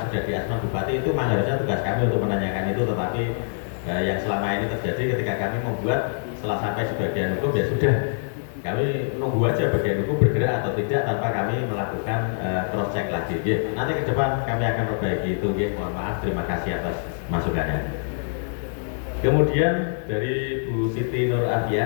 sudah di Asman Bupati. Itu memang harusnya tugas kami untuk menanyakan itu, tetapi yang selama ini terjadi ketika kami membuat, setelah sampai sebagian hukum ya sudah, kami nunggu aja bagian hukum bergerak atau tidak tanpa kami melakukan cross check lagi. Ya, nanti ke depan kami akan perbaiki itu. Ya, mohon maaf, terima kasih atas masukannya. Kemudian dari Bu Siti Nur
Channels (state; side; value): silent; right; digital silence